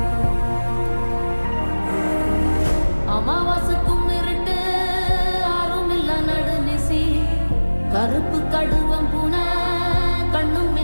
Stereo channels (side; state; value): both; inverted; correlation -1.00